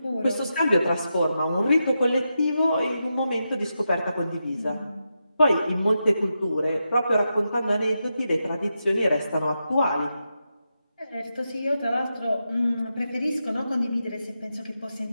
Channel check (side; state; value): both; inverted; correlation -0.87